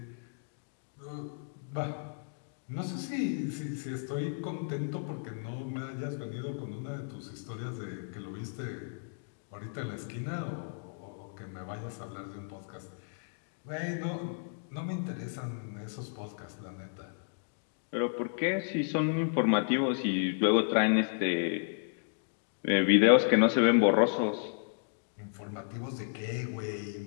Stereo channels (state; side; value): silent; right; digital silence